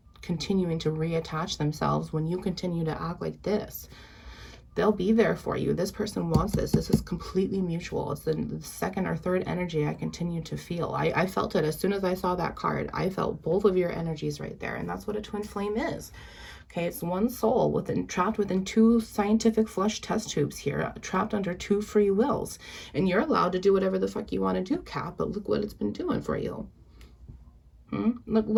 continuing to reattach themselves when you continue to act like this. They'll be there for you. This person wants this. This is completely mutual. It's the second or third energy I continue to feel. I felt it as soon as I saw that card. I felt both of your energies right there. And that's what a twin flame is. Okay, it's one soul trapped within two scientific flesh test tubes here, trapped under two free wills. And you're allowed to do whatever the fuck you want to do, Cap, but look what it's been doing for you.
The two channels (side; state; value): both; identical; correlation 1.00